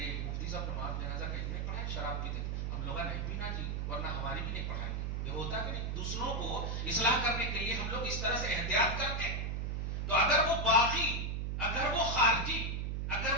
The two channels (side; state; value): right; noise; hum, 1 dB below the sound